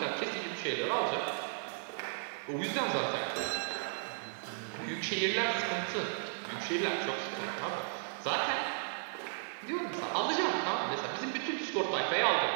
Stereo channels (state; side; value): silent; left; digital silence